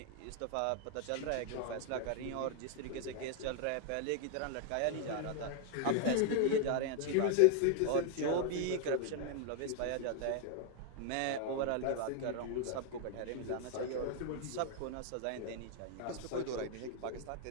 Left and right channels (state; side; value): different; both; correlation 0.00